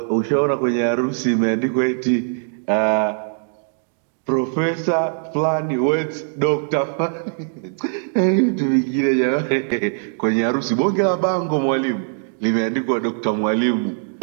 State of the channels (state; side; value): silent; left; digital silence